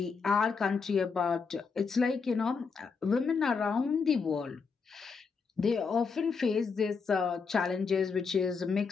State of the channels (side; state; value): right; quieter; 5.2 dB